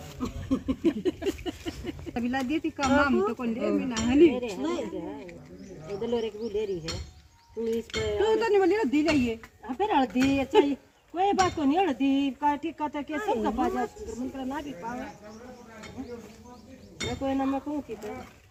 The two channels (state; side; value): identical; both; correlation 1.00